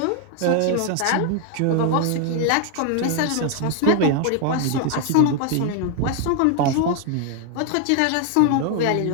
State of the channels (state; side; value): different; both; correlation 0.00